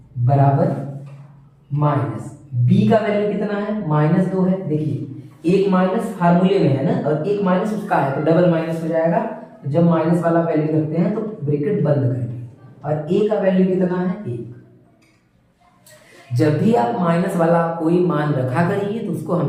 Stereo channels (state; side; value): identical; both; correlation 1.00